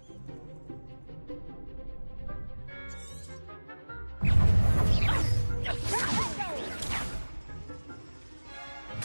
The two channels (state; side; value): inverted; both; correlation -1.00